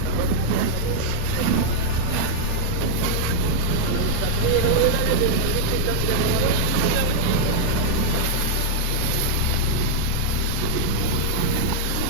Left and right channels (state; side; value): different; both; correlation -0.02